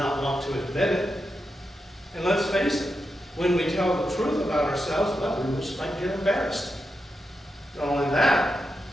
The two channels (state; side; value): normal; both; correlation 0.87